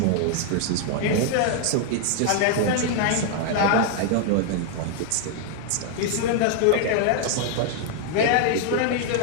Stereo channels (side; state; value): both; different; correlation 0.00